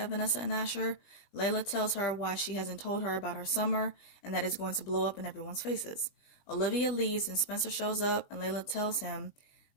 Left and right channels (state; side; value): late; right; 21 ms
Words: Vanessa and Asher. Layla tells her why she hasn't told her about her summer, and that it's going to blow up in everyone's faces. Olivia leaves, and Spencer shows up, and Layla tells him